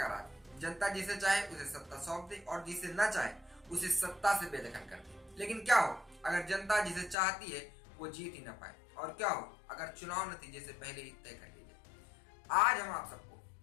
राज। जनता जिसे चाहे उसे सत्ता सौंप दे और जिसे न चाहे उसे सत्ता से बेदखल कर दे। लेकिन क्या हो अगर जनता जिसे चाहती है वो जीत ही न पाए, और क्या हो अगर चुनाव नतीजे से पहले ही तय कर ली जाए। आज हम आप सबको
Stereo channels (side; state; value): right; drops out; at 7.2 s